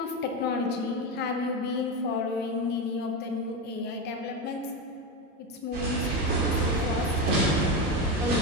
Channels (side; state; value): both; normal; correlation 0.15